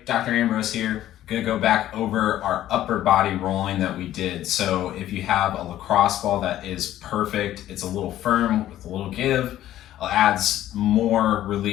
Dr. Ambrose here. Gonna go back over our upper body rolling that we did. So if you have a lacrosse ball that is perfect, it's a little firm with a little give, adds more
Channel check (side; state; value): right; quieter; 13.1 dB